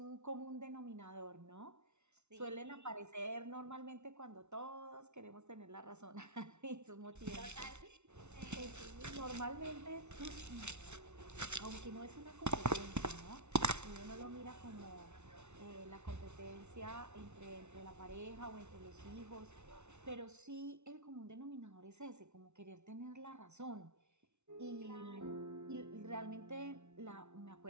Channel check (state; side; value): late; left; 0.82 ms